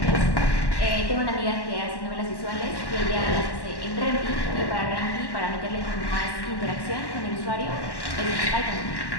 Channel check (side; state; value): right; late; 1.1 ms